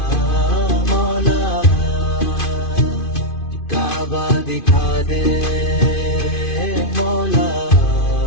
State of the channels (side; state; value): right; late; 2.5 ms